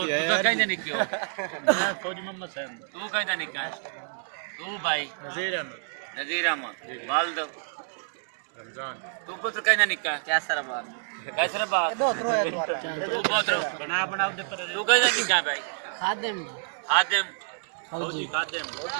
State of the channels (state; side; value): silent; left; digital silence